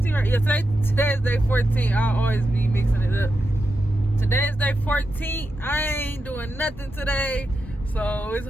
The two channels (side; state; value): both; normal; correlation 0.88